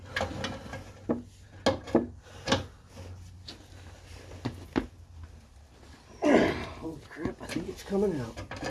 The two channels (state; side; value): identical; both; correlation 1.00